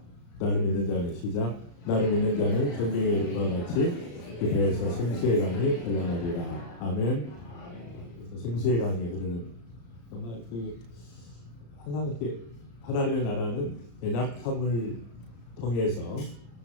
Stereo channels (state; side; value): late; right; 34 ms